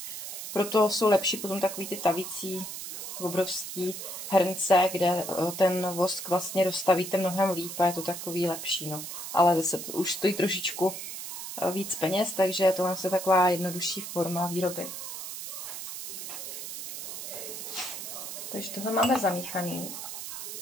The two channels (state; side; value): noise; right; hiss, 8 dB below the sound